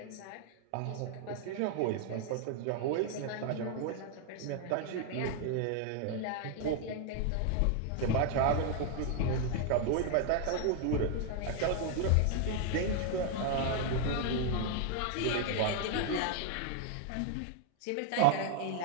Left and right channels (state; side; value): different; both; correlation 0.00